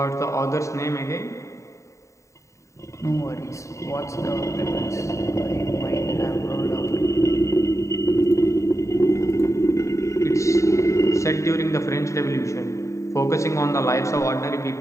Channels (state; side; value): late; right; 0.15 ms